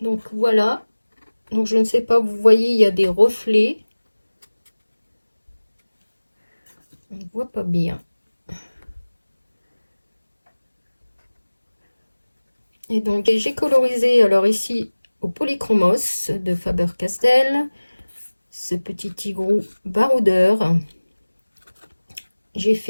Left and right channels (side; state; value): both; inverted; correlation -1.00